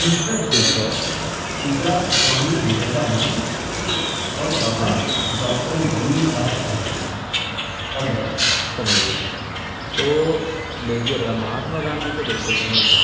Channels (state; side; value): identical; both; correlation 1.00